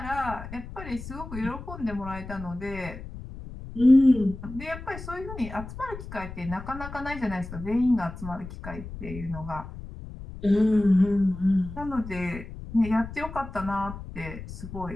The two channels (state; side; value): noise; left; rumble, 11 dB below the sound